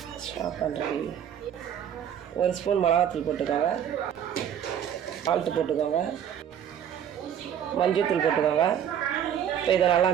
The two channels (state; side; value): quieter; left; 9.3 dB